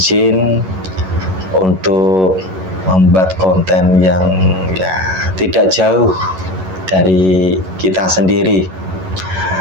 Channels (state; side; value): late; left; 11 ms